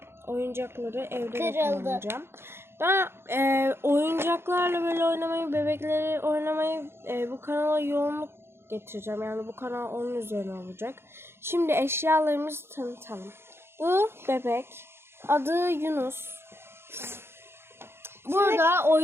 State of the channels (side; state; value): left; late; 0.12 ms